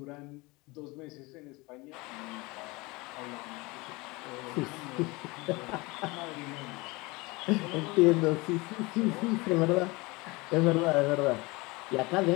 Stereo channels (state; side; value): quieter; right; 24.1 dB